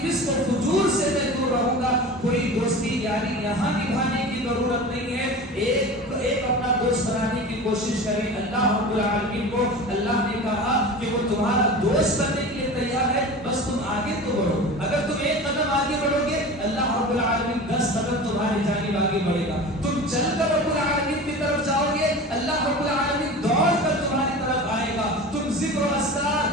فسق و فجور سے میں دور رہوں گا۔ کوئی دوستی یاری یہاں نبھانے کی ضرورت نہیں ہے، ایک اپنا دوست بنانے کی کوشش کریں۔ اللہ رب العالمین کو اللہ نے کہا کہ وہ تمہارا دوست بننے کے لیے تیار ہے، بس تم آگے تو بڑھو۔ اگر تم ایک قدم آگے بڑھو گے، اللہ رب العالمین 10 قدم تمہاری جانب آگے بڑھے گا۔ تم چل کر رب العالمین کی طرف جاؤ گے، اللہ رب العالمین دوڑ کر تمہاری طرف آئے گا۔ تم ذکر و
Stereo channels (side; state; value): both; normal; correlation 0.34